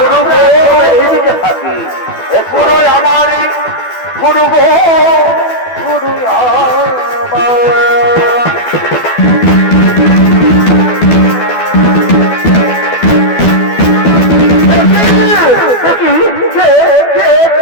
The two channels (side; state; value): right; late; 12 ms